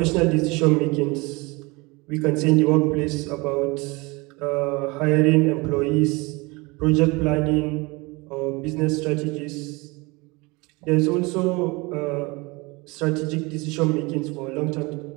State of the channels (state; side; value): quieter; left; 25.4 dB